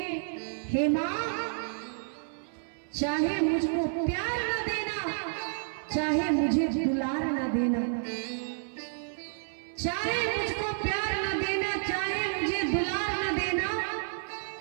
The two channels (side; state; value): left; silent; 58 dB below the other